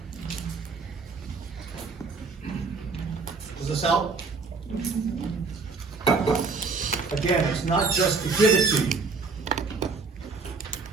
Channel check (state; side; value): quieter; left; 4.4 dB